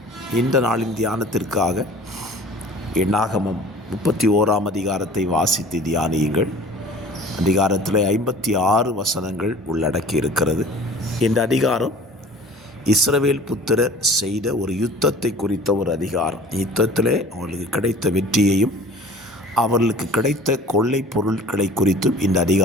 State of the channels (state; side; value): normal; both; correlation 0.45